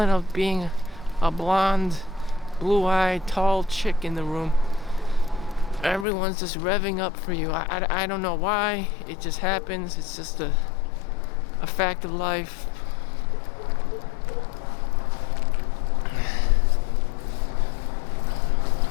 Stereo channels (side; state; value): right; drops out; at 6.1 s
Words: of being a blonde, blue-eyed, tall chick in the room. Everyone's just revving up for you. I don't know why. It just happens. It's just a fact of life.